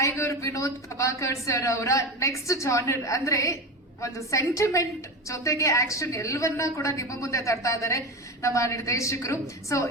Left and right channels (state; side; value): normal; both; correlation 0.23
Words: ವಿನೋದ್ ಪ್ರಭಾಕರ್ ಸರ್ ಅವರ ನೆಕ್ಸ್ಟ್ ಜಾನರ್ ಅಂದ್ರೆ ಒಂದು ಸೆಂಟಿಮೆಂಟ್ ಜೊತೆಗೆ ಆಕ್ಷನ್ ಎಲ್ಲವನ್ನ ಕೂಡ ನಿಮ್ಮ ಮುಂದೆ ತರ್ತಾ ಇದ್ದಾರೆ ನಮ್ಮ ನಿರ್ದೇಶಕರು. ಸೊ